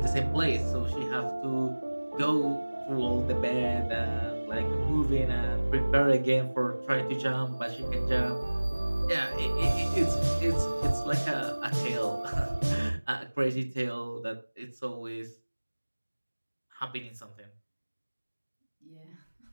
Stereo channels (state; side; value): inverted; both; correlation -1.00